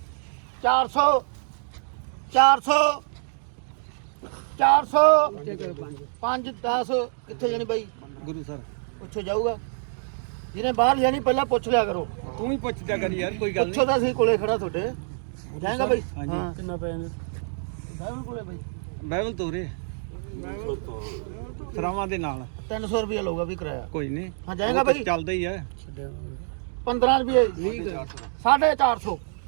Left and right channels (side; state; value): left; silent; digital silence